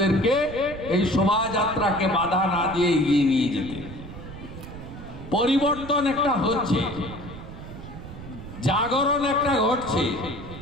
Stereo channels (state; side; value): noise; right; rumble, 13 dB below the sound